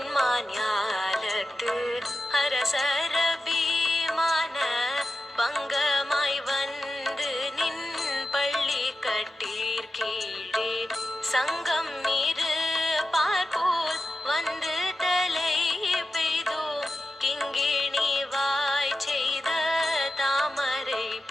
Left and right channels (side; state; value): both; normal; correlation 0.92